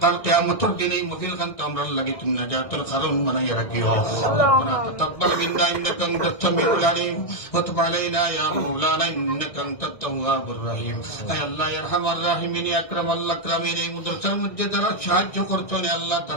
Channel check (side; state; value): right; late; 1.6 ms